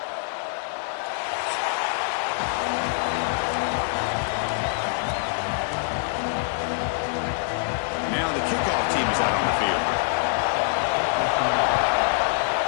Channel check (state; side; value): silent; right; 62 dB below the other